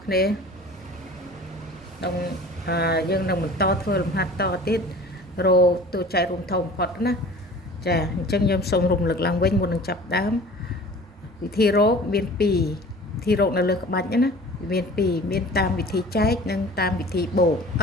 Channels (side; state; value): both; normal; correlation 0.43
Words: គ្នាក្នុងយើងនឹងបន្តធ្វើលំហាត់តទៀតរោតួចែករួមធំបំផុតណាចាអញ្ចឹងខ្ញុំសូមរំលឹកឡើងវិញមុននឹងចាប់ដើមវិធីរោមាន2វិធីរោនៅលើក្បាច់ណាមាន2មានតាមវិធីចែកនិងតាមវិធីបូក